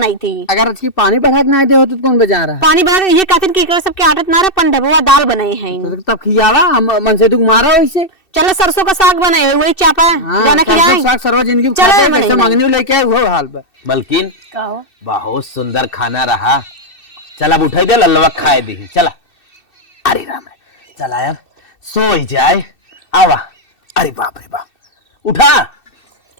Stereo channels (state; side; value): late; right; 2.6 ms